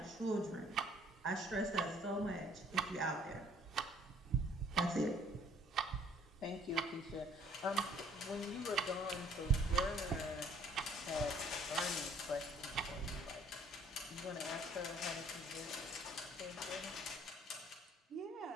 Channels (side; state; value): both; normal; correlation 0.58